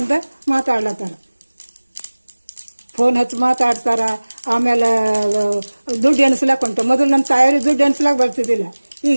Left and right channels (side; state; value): both; inverted; correlation -1.00